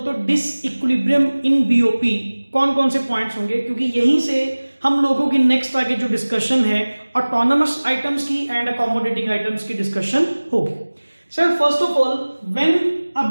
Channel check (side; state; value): both; inverted; correlation -1.00